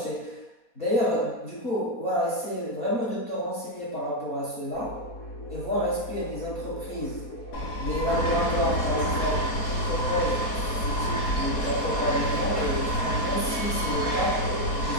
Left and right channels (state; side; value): late; right; 4.2 ms